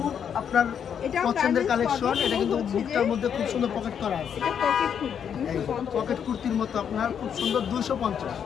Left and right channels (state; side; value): quieter; right; 8.1 dB